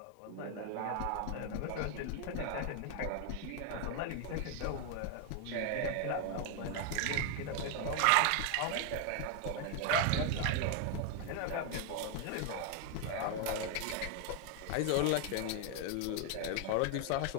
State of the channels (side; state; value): both; different; correlation 0.01